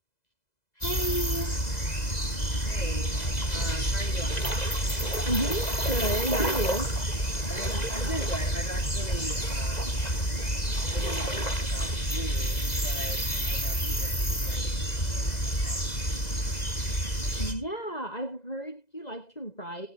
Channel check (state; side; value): late; right; 2.0 ms